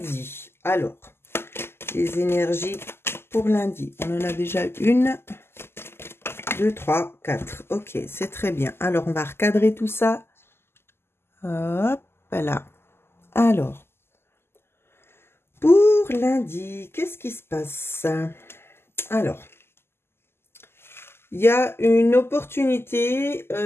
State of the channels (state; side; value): late; right; 0.12 ms